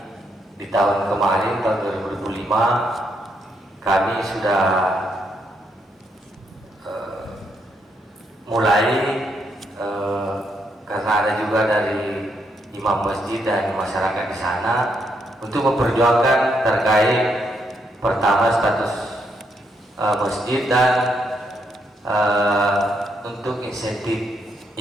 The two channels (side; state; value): both; normal; correlation 0.77